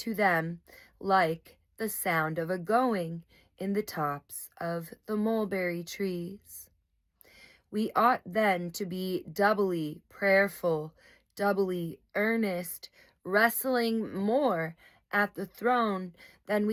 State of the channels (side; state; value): both; identical; correlation 1.00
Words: them like the sound of a going in the tops of the mulberry trees. We ought then to be doubly prayerful, doubly earnest, wrestling more at the throne than